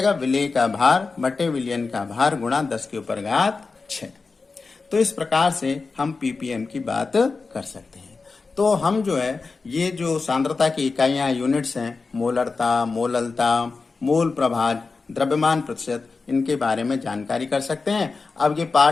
विलेय का भार बटे विलयन का भार गुणा 10⁶। तो इस प्रकार से हम ppm की बात कर सकते हैं। तो हम जो है ये जो सांद्रता की इकाइयां यूनिट्स हैं, मोलरता, मोललता, मोल प्रभाज, द्रव्यमान प्रतिशत, इनके बारे में जानकारी कर सकते हैं। अब ये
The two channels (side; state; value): right; quieter; 4.2 dB